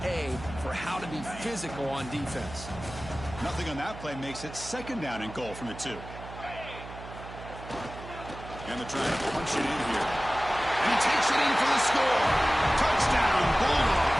A for how to be physical on defense. Nothing on that play makes it second down and goal from the 2. And they're trying to punch it in here. And he takes it in for the score. Touchdown,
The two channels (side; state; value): right; noise; hum, 13 dB below the sound